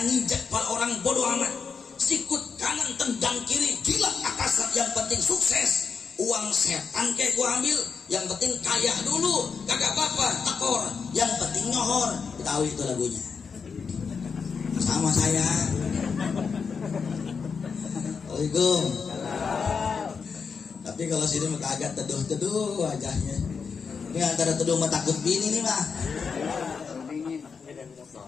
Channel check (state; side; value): quieter; right; 5.7 dB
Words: nginjak kepala orang bodoh amat. Sikut kanan tendang kiri, gila atasan, yang penting sukses. Uang setan kayak gua ambil, yang penting kaya dulu, kagak apa-apa, tekor, yang penting nyohor. Tahu itu lagunya. Sama saya. Assalamualaikum. Tapi kalau sini mah agak teduh-teduh wajahnya. Ini antara teduh sama takut bini nih mah.